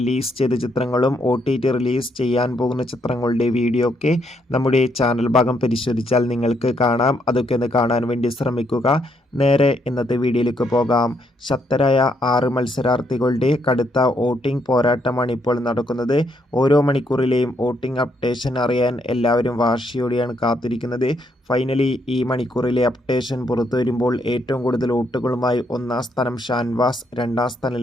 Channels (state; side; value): normal; both; correlation 0.74